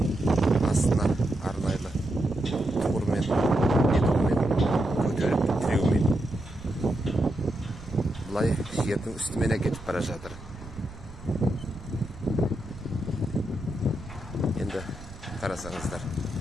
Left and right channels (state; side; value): noise; right; rumble, 16 dB below the sound